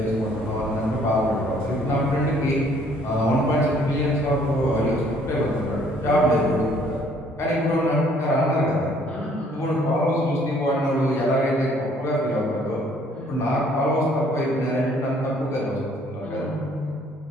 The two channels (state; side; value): normal; both; correlation 0.61